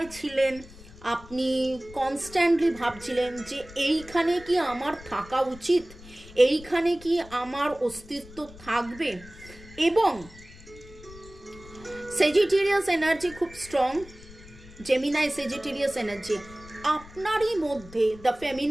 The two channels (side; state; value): left; noise; rumble, 19 dB below the sound